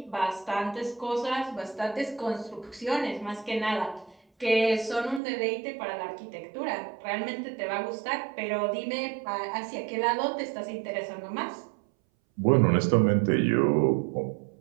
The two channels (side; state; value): left; drops out; at 5.2 s